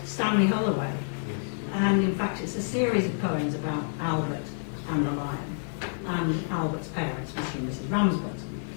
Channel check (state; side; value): silent; right; digital silence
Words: Stanley Holloway, and in fact it's a series of poems about Albert and the Lion, and Albert's parents, Mr. and Mrs. Ramsbottom.